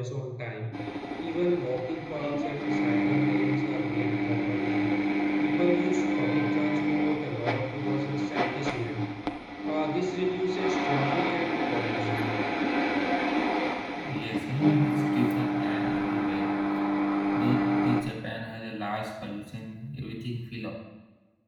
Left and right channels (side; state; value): both; identical; correlation 1.00